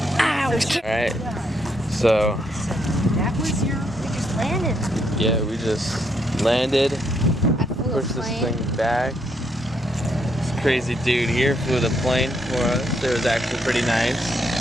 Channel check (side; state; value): both; normal; correlation 0.75